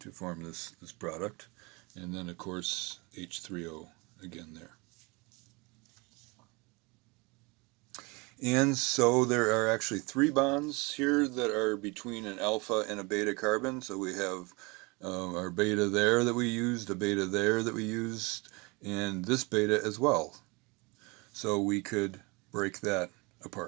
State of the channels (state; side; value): quieter; left; 27.2 dB